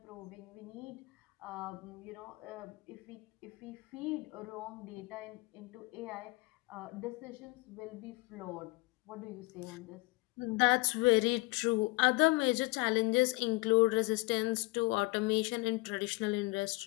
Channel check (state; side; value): quieter; right; 24.5 dB